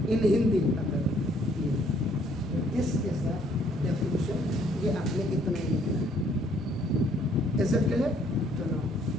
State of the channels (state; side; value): normal; both; correlation 0.64